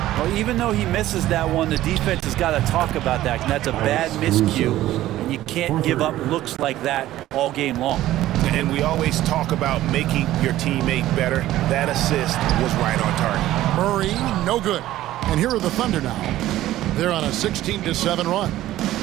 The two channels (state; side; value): quieter; left; 14.6 dB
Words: even though he misses that one, the defense has got to talk about that. And that's a bad miscue. And you can't give up looks like that all game long. And we always talk about making your teammate better. That assist was right on target. Murray, no good. And here are the Thunder now. They're on a 16-7 run.